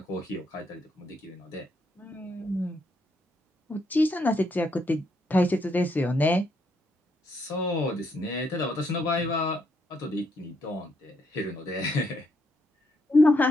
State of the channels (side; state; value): both; normal; correlation 0.76